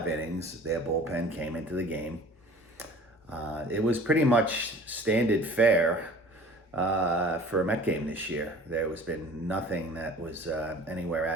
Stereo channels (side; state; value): both; normal; correlation 0.46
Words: innings. Their bullpen came into the game. It was pretty much standard fare for a Met game this year. There has been nothing that was anywhere